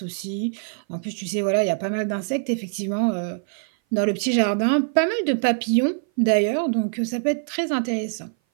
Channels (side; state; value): left; silent; 58 dB below the other